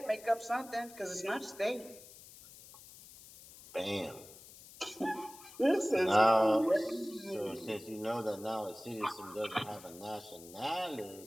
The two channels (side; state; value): left; noise; hiss, 19 dB below the sound